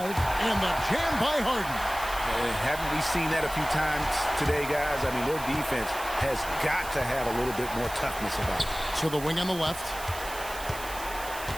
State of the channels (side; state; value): right; noise; hiss, 12 dB below the sound